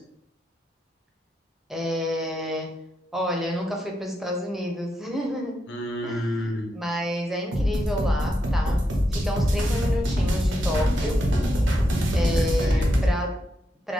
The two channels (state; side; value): normal; both; correlation 0.84